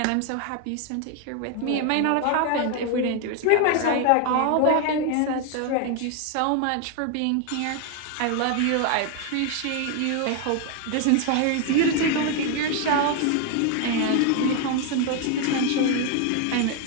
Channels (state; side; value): different; both; correlation 0.01